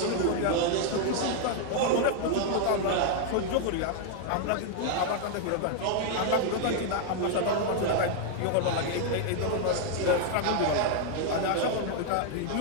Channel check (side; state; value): both; different; correlation 0.00